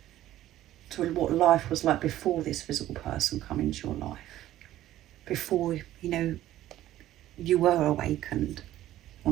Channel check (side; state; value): left; quieter; 13.8 dB